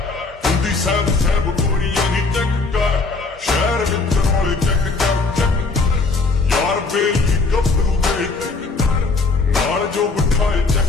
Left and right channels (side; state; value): right; quieter; 3.9 dB